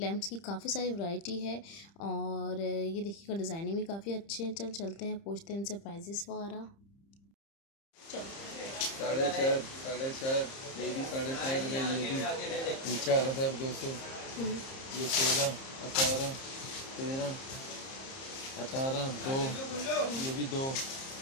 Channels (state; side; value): late; right; 30 ms